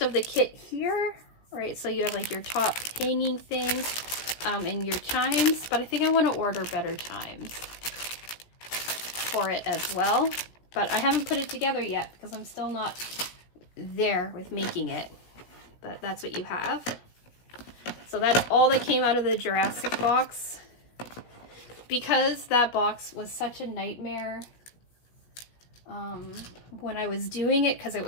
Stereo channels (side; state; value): right; late; 17 ms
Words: of the kit here, right? So you have like your top hanging thing and your chimes, but I think I want to order better chimes for it as well. But I haven't put it together yet because I'm still not there with making it. But that's what you have. So that's all that came out of the Jurassic box. Because that box was such a nightmare when I was doing it, because it